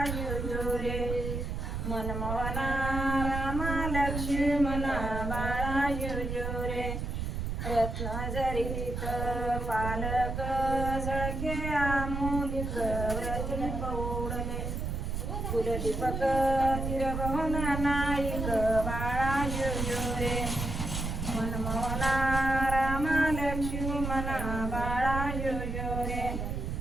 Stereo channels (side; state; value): right; noise; rumble, 3 dB below the sound